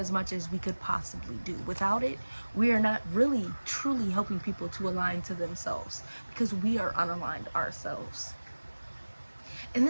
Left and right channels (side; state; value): both; inverted; correlation -1.00